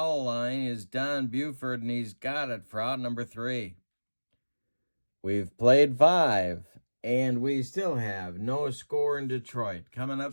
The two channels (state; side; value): inverted; both; correlation -1.00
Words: line is Don Buford, and he's got it for out number 3. We've played 5, and we still have no score in Detroit. Coming